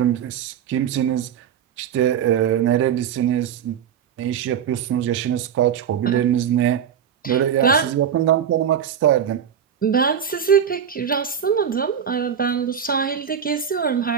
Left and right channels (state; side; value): quieter; left; 8.4 dB